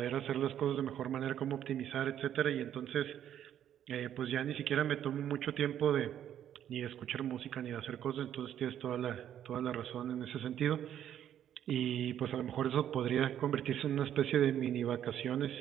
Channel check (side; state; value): left; quieter; 10.4 dB